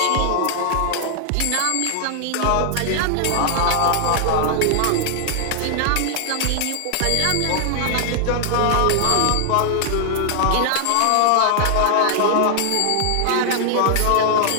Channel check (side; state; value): both; different; correlation 0.00